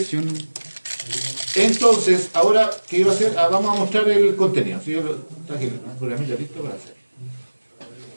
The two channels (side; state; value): both; inverted; correlation -1.00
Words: entonces, ahora, ¿qué iba a hacer? Vamos a mostrar el contenido. ¿Sí? Yo traje el programita listo para hacer.